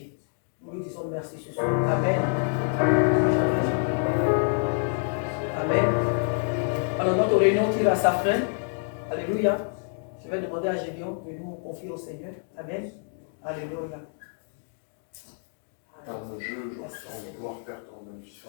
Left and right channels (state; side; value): silent; right; 60 dB below the other